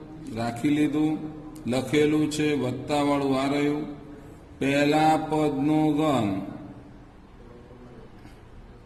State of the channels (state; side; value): identical; both; correlation 1.00